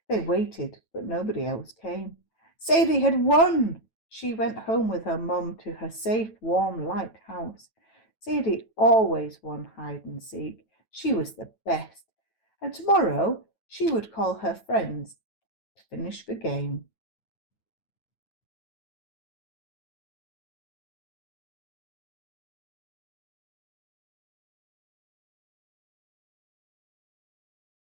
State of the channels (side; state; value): right; late; 9.1 ms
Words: They waited, but nobody else came. Sadie had won! She went home with her mum to her safe, warm, light house. Sadie always won hide and seek. She was the best. And tomorrow she would call her friends to finish the game.